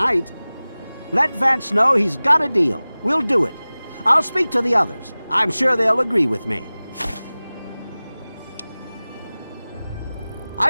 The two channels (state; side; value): inverted; both; correlation -0.98